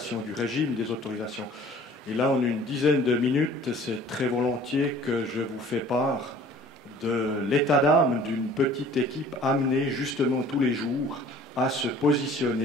du régime des autorisations. Et là, en une dizaine de minutes, c'est très volontiers que je vous fais part de l'état d'âme d'une petite équipe amenée justement tous les jours à se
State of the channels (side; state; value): both; normal; correlation 0.50